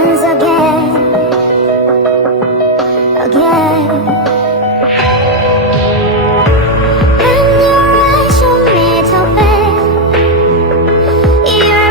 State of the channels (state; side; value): normal; both; correlation 0.01